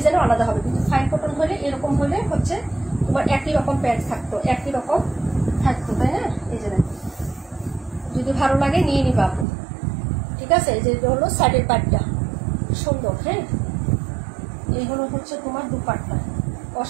আলাদা হবে। কিন্তু ফাইন কটন হলে এরকম হলে হচ্ছে তোমার একই রকম প্যান্ট থাকতো, একই রকম থাকতো, তাই না? এই যে যদি ভালো লাগে নিয়ে নিবা আপু, ঠিক আছে। এই যে হলো সাইডের পাটটা সুন্দর। হ্যাঁ, এই হলো হচ্ছে তোমার দুপাট্টা,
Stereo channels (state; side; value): drops out; left; at 9.5 s